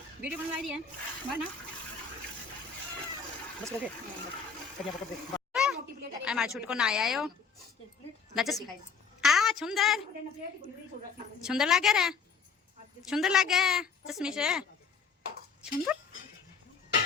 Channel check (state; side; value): quieter; right; 5.7 dB